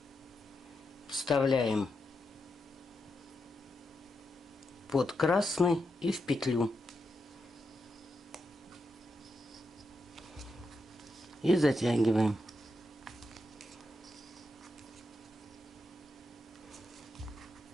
вставляем под красный и в петлю. И затягиваем.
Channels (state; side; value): normal; both; correlation 0.85